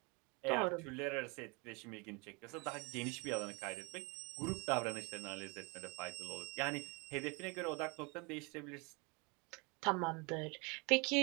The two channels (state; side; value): quieter; left; 29.6 dB